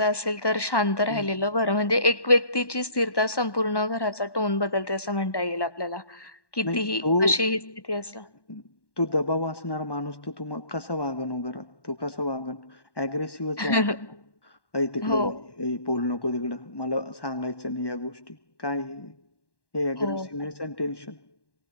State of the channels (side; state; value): right; late; 1.1 ms